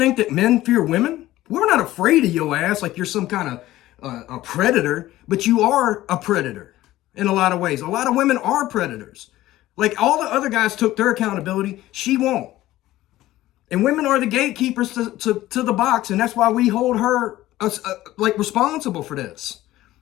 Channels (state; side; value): quieter; right; 15.7 dB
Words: that men fear women? We're not afraid of your ass like you're some kind of a predator, but you are a predator in a lot of ways. A lot of women are predators. Like all the other guys took their accountability, she won't. And women are the gatekeepers to the box, and that's why we hold her like responsible for this.